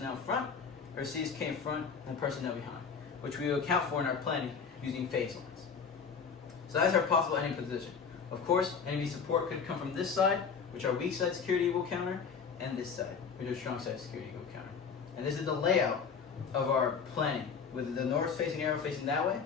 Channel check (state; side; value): quieter; right; 6.1 dB